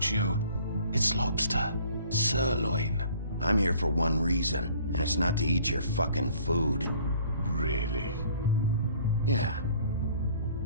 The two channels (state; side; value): inverted; both; correlation -0.55